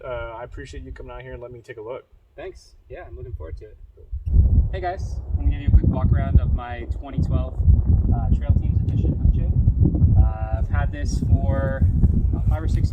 I appreciate you coming out here and letting me take a look. Thanks. Yeah, I'm looking forward to it. Cool. Hey guys, I'm going to give you a quick walk around of my 2012 Trail Teams Edition FJ. I've had this for about 5 or 6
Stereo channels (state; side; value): identical; both; correlation 1.00